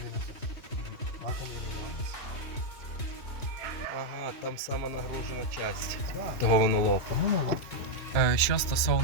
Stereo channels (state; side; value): late; right; 3.0 ms